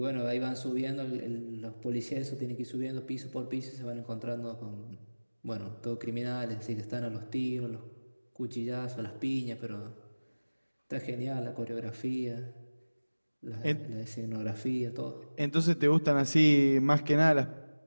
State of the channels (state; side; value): inverted; both; correlation -1.00